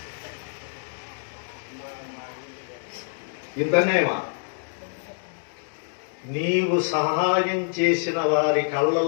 ఇంతనేమా నీవు సహాయం చేసిన వారి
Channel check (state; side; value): silent; right; digital silence